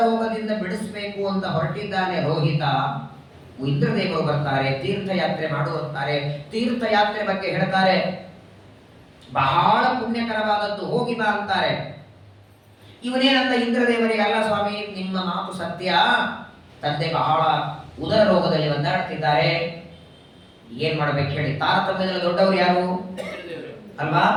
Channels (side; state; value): both; identical; correlation 1.00